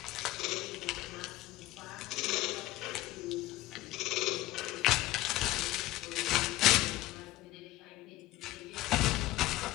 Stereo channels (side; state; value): right; quieter; 16.8 dB